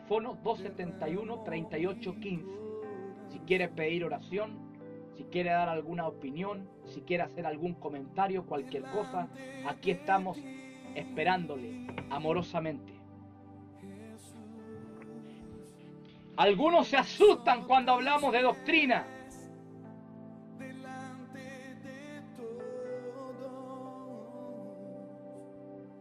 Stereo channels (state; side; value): identical; both; correlation 1.00